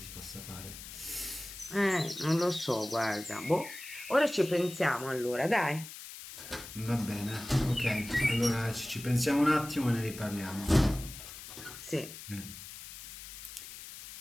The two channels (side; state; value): left; noise; hiss, 13 dB below the sound